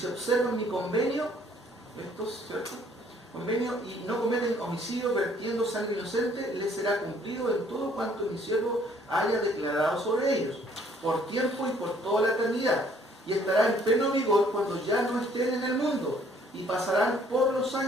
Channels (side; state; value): both; normal; correlation 0.61